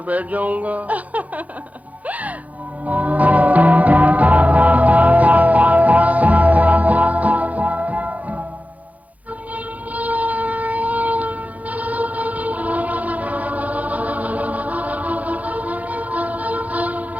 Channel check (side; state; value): left; late; 0.073 ms